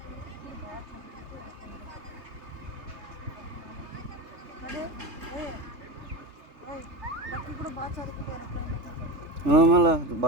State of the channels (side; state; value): left; late; 3.4 ms